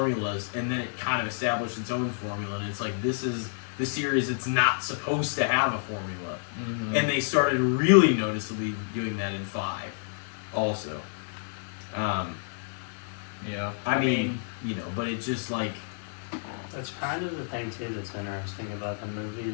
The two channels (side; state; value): right; silent; digital silence